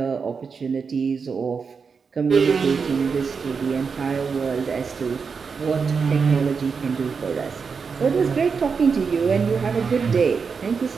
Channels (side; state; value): left; quieter; 5.5 dB